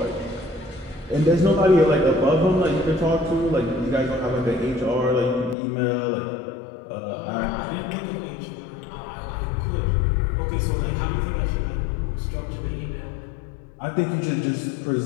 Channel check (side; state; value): right; drops out; at 5.6 s